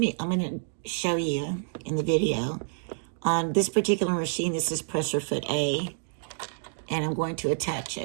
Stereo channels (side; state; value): left; silent; digital silence